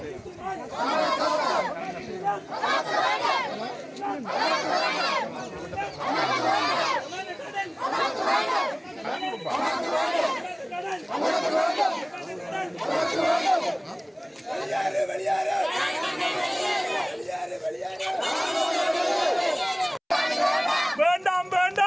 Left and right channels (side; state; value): both; identical; correlation 1.00